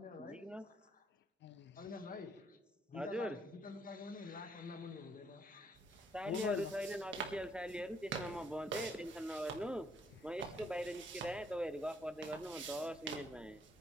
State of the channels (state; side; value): normal; both; correlation 0.68